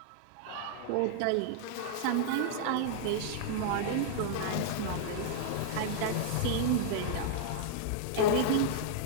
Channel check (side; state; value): both; different; correlation -0.01